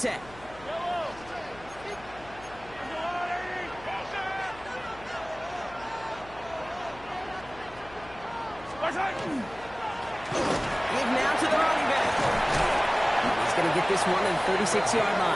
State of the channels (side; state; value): left; noise; hum, 21 dB below the sound